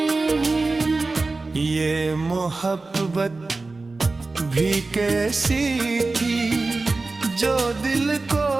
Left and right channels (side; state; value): left; quieter; 3.5 dB